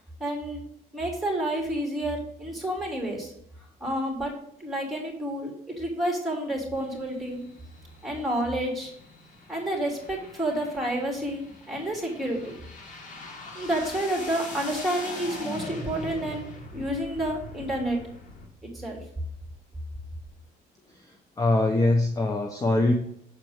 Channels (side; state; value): both; normal; correlation 0.69